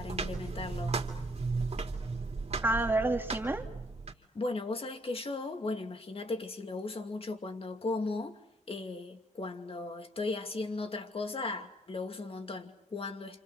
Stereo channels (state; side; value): normal; both; correlation 0.67